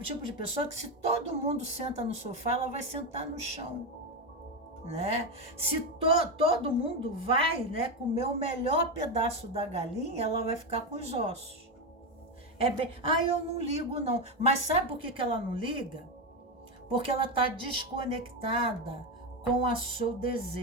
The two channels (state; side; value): normal; both; correlation 0.12